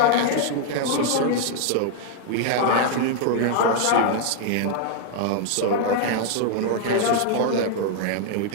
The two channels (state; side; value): different; both; correlation 0.00